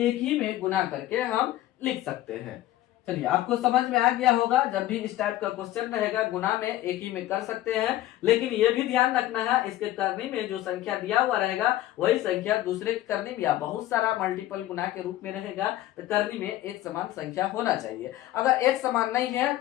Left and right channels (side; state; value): right; quieter; 14.6 dB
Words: ही में गुना करके हम लिख सकते हैं। चलिए आपको समझ में आ गया होगा, जब भी इस टाइप का क्वेश्चन रहेगा गुना में एक ही में कर सकते हैं, लेकिन ये भी ध्यान रखना है इसके करनी में जो संख्या दिया हुआ रहेगा वही संख्या दूसरे के करनी में या बहुत सारा मल्टीपल गुना के रूप में रहेगा, तो करनी में एक समान संख्या होना चाहिए। अगर एक समान नहीं है